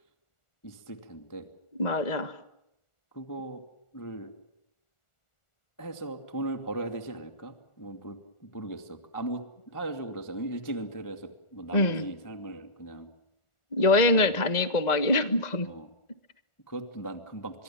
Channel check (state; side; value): late; right; 1.4 ms